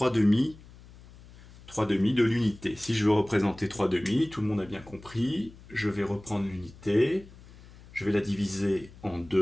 demi. 3 demi de l'unité. Si je veux représenter 3 demi, tout le monde a bien compris, je vais reprendre l'unité, je vais la diviser en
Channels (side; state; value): left; noise; hum, 21 dB below the sound